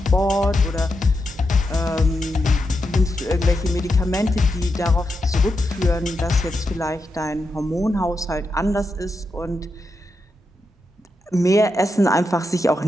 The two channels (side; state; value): both; normal; correlation 0.86